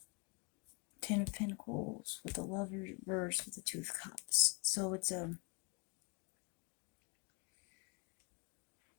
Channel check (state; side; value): quieter; right; 32.6 dB